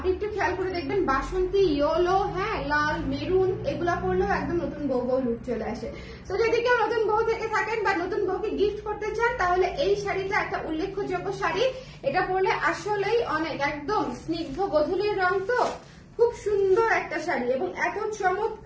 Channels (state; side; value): identical; both; correlation 1.00